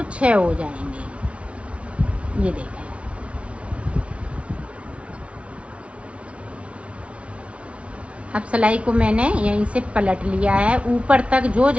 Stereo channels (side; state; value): left; late; 0.061 ms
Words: 6 हो जाएंगे, ये देखें। अब सिलाई को मैंने यहीं से पलट लिया है, ऊपर तक जो